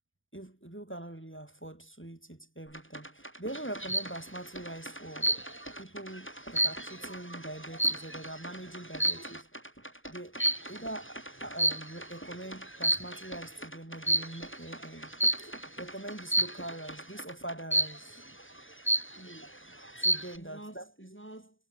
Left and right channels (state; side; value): late; right; 0.57 ms